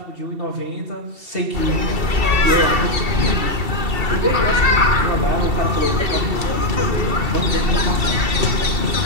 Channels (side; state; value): left; late; 2.7 ms